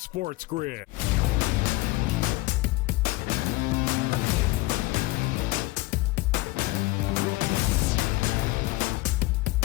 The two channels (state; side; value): quieter; right; 20.6 dB